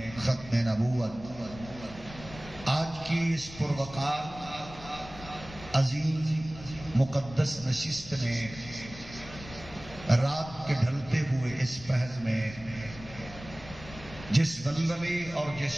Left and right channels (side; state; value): left; noise; rumble, 15 dB below the sound